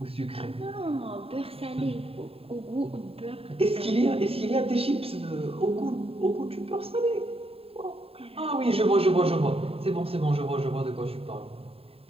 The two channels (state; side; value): late; left; 0.28 ms